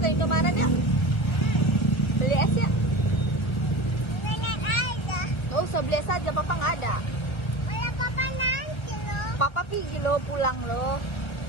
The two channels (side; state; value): right; late; 1.3 ms